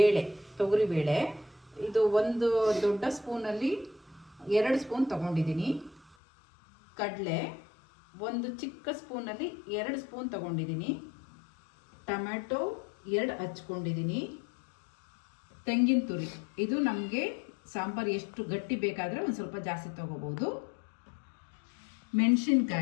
ತೊಗರಿ ಬೇಳೆ, ಇದು 1 ದೊಡ್ಡ ಸ್ಪೂನಲ್ಲಿ 2 ಸ್ಪೂನ್ ತಗೊಂಡಿದ್ದೀನಿ. ಕಡಲೆ 1 ಚಿಕ್ಕ ಸ್ಪೂನಲ್ಲಿ 2 ಸ್ಪೂನ್ ತಗೊಂಡಿದ್ದೀನಿ. ಟೊಮ್ಯಾಟೊ 2 ಹಚ್ಕೊಂಡಿದ್ದೀನಿ. ತೆಂಗಿನ ತುರಿ, ಇದು ನಮಗೆ ಸಾಂಬಾರು ಎಷ್ಟು ಗಟ್ಟಿ ಬೇಕಾದರೆ ಒಂದು ಸ್ವಲ್ಪ ಜಾಸ್ತಿ ತಗೋಬೋದು.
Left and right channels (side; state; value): right; drops out; at 6.2 s